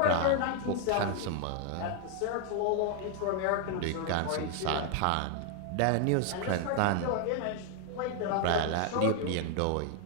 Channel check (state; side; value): different; both; correlation 0.00